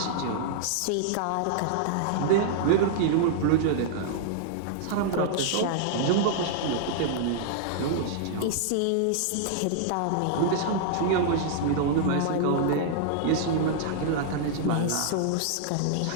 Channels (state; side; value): different; both; correlation -0.01